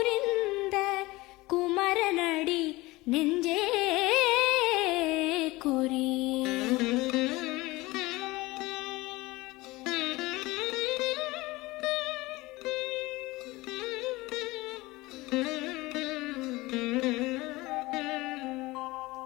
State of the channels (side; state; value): right; quieter; 20.9 dB